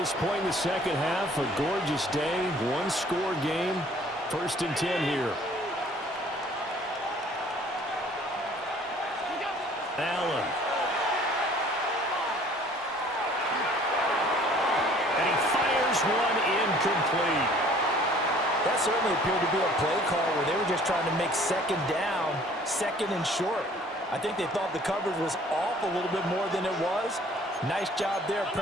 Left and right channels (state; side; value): normal; both; correlation 0.54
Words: point in the second half. A gorgeous day, one-score game. 1st and 10 here. Allen. And he fires one incomplete. That certainly appeared to be a play call where they were just trying to make second down, second and short. I think they thought the coverage was off a little bit more than it was. Nice job there